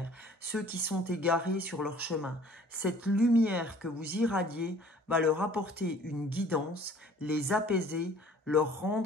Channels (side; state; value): both; normal; correlation 0.52